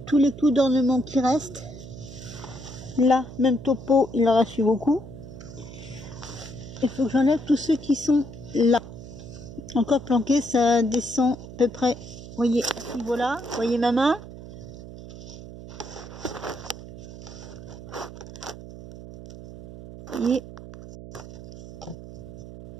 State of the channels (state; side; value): noise; right; hum, 14 dB below the sound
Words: tous les clous d'ornement qui restent. Là, même topo, il en reste beaucoup. Il faut que j'enlève tous ceux qui sont là. Encore planqués, ça descend à peu près, vous voyez, à ce niveau-là. Vous voyez ma main? Vous voyez?